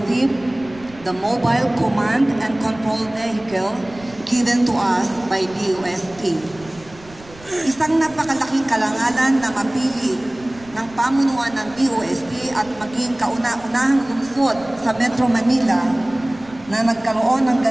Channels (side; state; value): right; noise; rumble, 22 dB below the sound